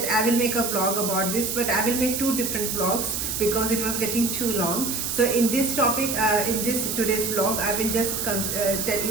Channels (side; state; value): right; noise; hiss, 2 dB below the sound